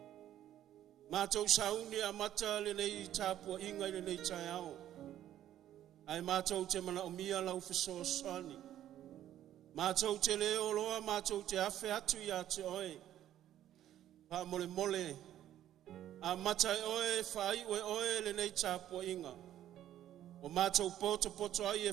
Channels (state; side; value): quieter; left; 11.9 dB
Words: Ma tau sauni a mata le nei tāpua inga i le nei tai au. Ai ma tau te mana o mia lau fiso sani. Ma tau te leo loa, ma tau te afe atu i a te oe. Pa mole mole. A mata e oe, whai oe le nei tāpua inga. O ma tau poto ai e